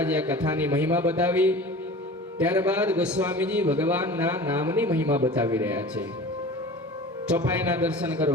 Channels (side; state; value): both; normal; correlation 0.38